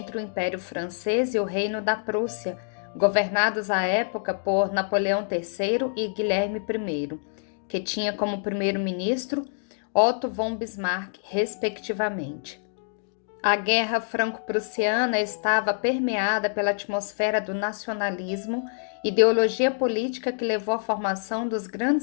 o Império Francês e o Reino da Prússia, governados à época por Napoleão III e Guilherme I, que tinha como primeiro-ministro Otto von Bismarck, respectivamente. A Guerra Franco-Prussiana estava permeada pela atmosfera do nacionalismo, ideologia política que levou à formação dos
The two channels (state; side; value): silent; right; digital silence